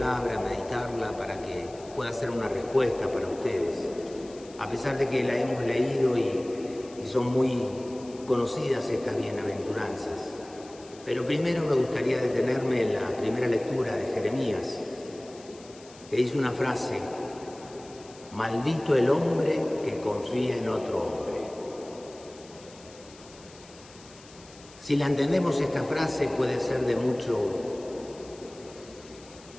meditarla para que pueda ser una respuesta para ustedes. A pesar de que la hemos leído y son muy conocidas estas bienaventuranzas. Pero primero me gustaría detenerme en la primera lectura de Jeremías, que dice una frase: maldito el hombre que confía en otro hombre. Si la entendemos, esta frase puede ser de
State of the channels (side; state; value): left; noise; hiss, 22 dB below the sound